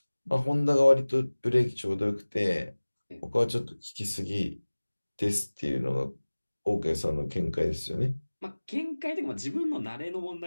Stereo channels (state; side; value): inverted; both; correlation -1.00